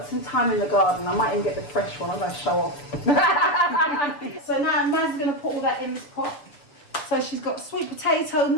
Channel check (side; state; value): right; late; 6.9 ms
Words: some thyme in the garden. I might even get the fresh one. I'm going to show off. So now Mazz is going to put all that in this pot. So she's got sweet potato,